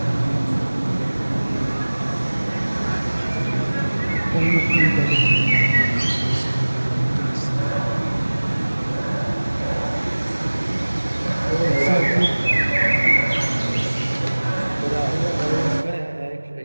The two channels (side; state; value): both; inverted; correlation -1.00